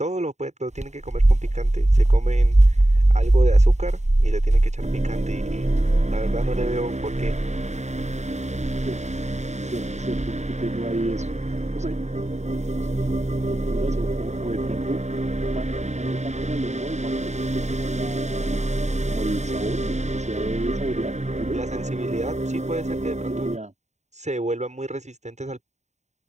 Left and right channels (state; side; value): late; left; 0.33 ms